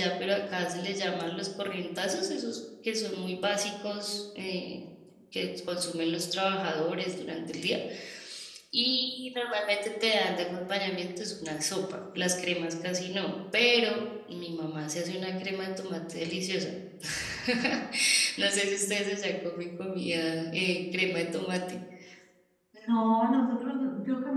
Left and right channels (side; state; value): both; identical; correlation 1.00